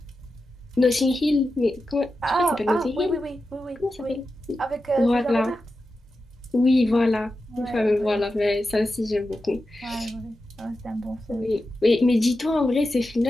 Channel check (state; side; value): normal; both; correlation 0.91